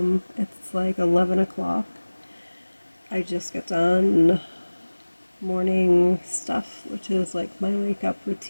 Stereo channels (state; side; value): inverted; both; correlation -1.00